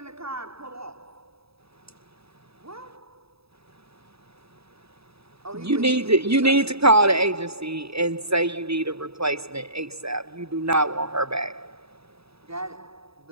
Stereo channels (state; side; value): late; left; 0.77 ms